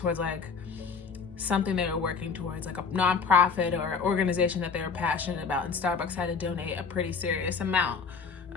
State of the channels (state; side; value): quieter; right; 5.4 dB